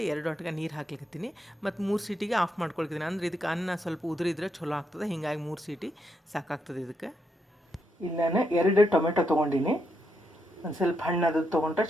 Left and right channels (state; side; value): normal; both; correlation 0.80